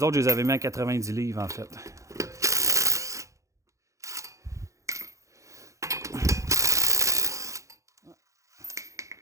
autres, je les avais mis à 90 livres, en fait.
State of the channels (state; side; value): late; left; 0.15 ms